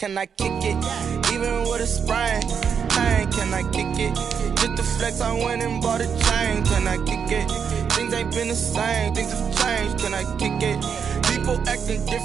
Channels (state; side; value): quieter; left; 6.9 dB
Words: I kick it? Even with a sprain. Bang, can I kick it? Just the flex, I went and bought a chain. Can I kick it? Things ain't been the same. Things have changed. Can I kick it? People acting